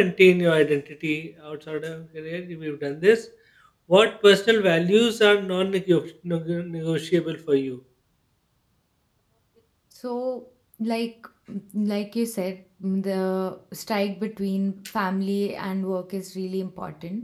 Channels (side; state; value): both; identical; correlation 1.00